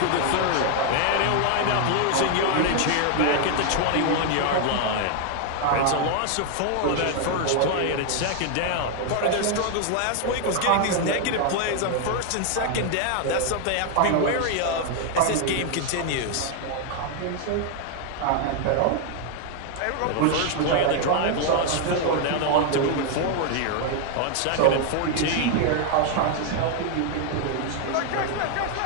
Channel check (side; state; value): both; different; correlation 0.00